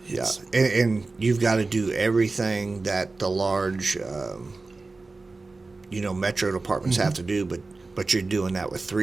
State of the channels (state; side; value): quieter; left; 3.6 dB